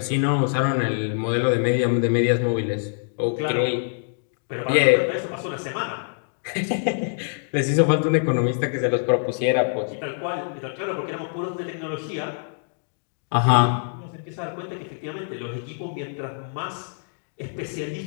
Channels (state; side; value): silent; right; digital silence